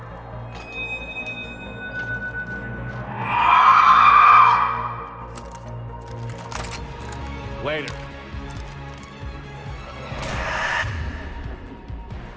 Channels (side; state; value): both; identical; correlation 1.00